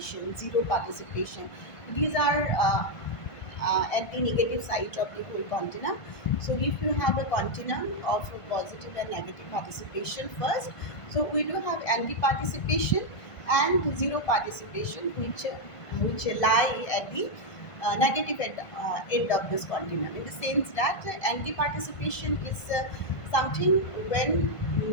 zero participation. These are at the negative side of the whole continuum. So if you have a continuum of positive and negative participation first, so we do have anti-participation and zero participation, which lie at the negative end of this continuum. In the sense that anti-participation is something when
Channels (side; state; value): right; late; 1.5 ms